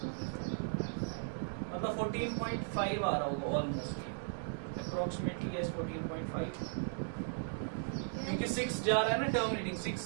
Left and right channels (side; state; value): left; silent; digital silence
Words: मतलब 14.5 आ रहा होगा ऑलमोस्ट अप्रोक्सीमेटली यस 14.5 क्योंकि 6 जा रहा है ना टर्मिनेटिंग